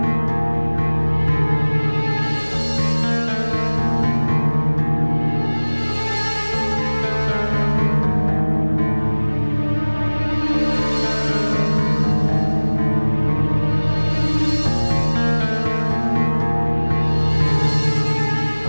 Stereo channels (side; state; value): both; inverted; correlation -1.00